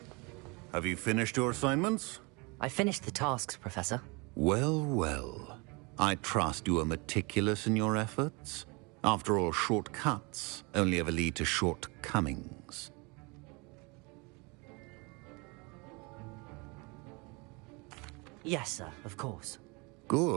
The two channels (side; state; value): left; quieter; 28.7 dB